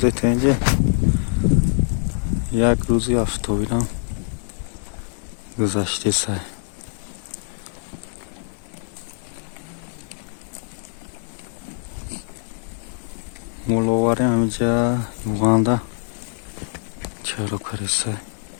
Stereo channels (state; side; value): silent; right; digital silence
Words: اینجا یک روزی افتابیدم گذشته سر مولواری همینجا یوغاندا چرا کرسه